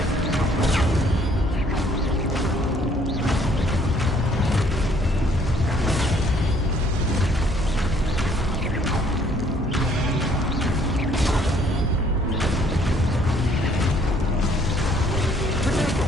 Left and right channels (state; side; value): normal; both; correlation 0.63